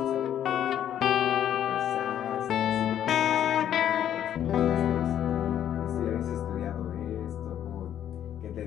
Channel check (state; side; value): quieter; right; 10.5 dB